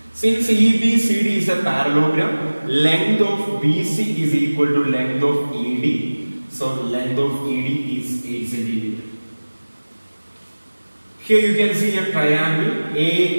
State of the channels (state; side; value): inverted; both; correlation -1.00